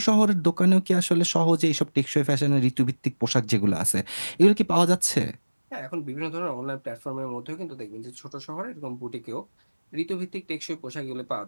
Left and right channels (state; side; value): inverted; both; correlation -1.00